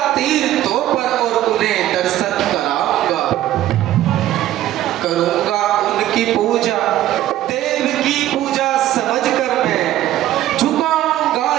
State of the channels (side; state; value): left; quieter; 13.6 dB